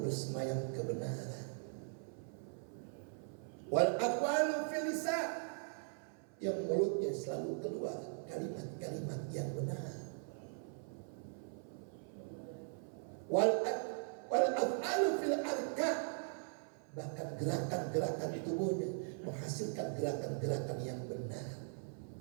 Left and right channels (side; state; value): left; silent; 51 dB below the other